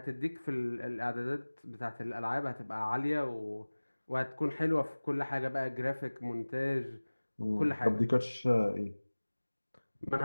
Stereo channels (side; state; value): both; inverted; correlation -1.00